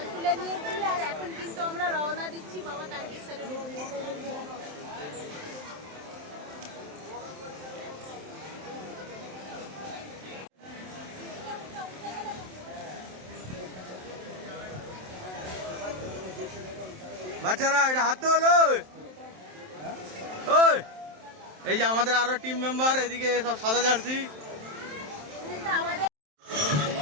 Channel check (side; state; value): left; late; 27 ms